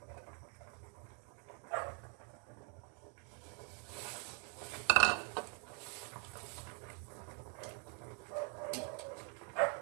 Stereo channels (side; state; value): left; quieter; 38.6 dB